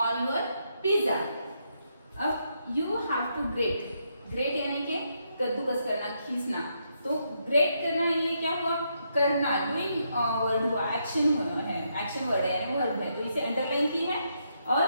on your pizza. अब you have to grate, great यानी कि कद्दूकस करना, खींचना, तो ग्रेट करना ये क्या हुआ, करना, डूइंग वर्ड हुआ, एक्शन हुआ है, एक्शन वर्ड है यानी वर्ब है, तो इसे अंडरलाइन की है। और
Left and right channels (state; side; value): inverted; both; correlation -0.78